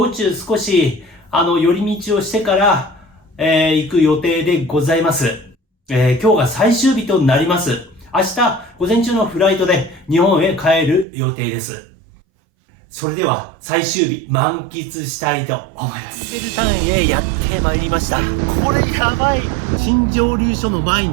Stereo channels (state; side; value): drops out; left; at 11.1 s